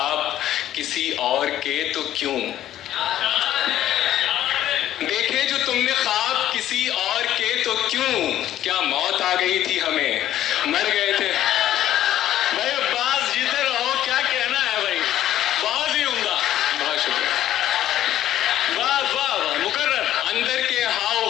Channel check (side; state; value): right; quieter; 12.4 dB